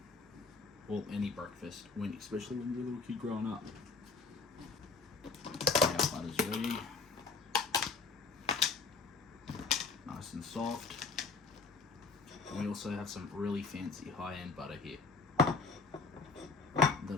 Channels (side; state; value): right; quieter; 4.5 dB